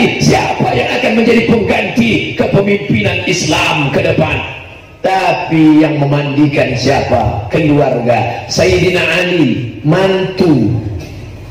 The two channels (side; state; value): both; identical; correlation 1.00